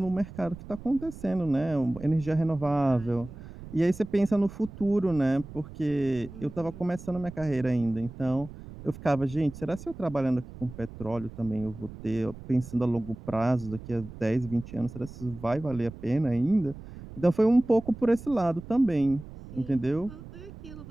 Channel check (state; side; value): noise; right; rumble, 15 dB below the sound